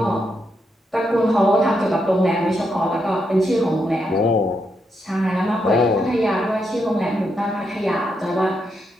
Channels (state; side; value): normal; both; correlation 0.81